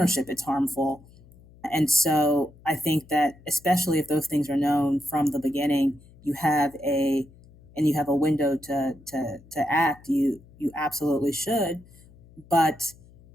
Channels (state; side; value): noise; left; hum, 25 dB below the sound